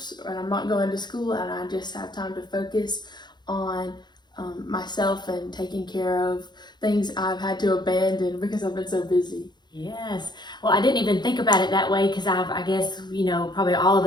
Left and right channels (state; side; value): late; right; 0.21 ms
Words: and I'm not going to school, and I just have time to focus on myself and taking care of things I've had to abandon because I've been so busy. Yes. Well, I didn't even think about it that way because I guess, probably all of